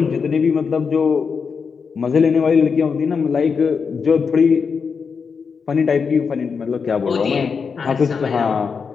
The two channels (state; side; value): quieter; right; 5.7 dB